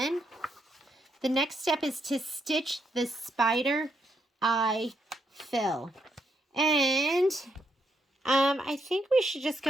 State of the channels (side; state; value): both; normal; correlation 0.78